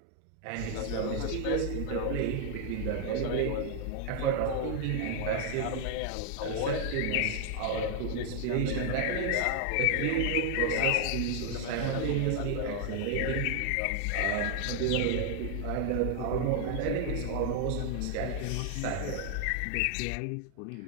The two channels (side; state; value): both; different; correlation 0.00